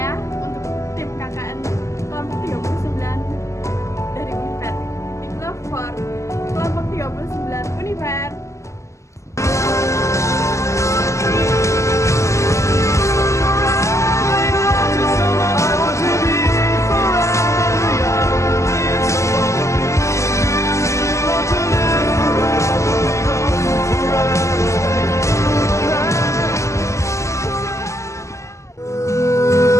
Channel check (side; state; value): right; late; 0.14 ms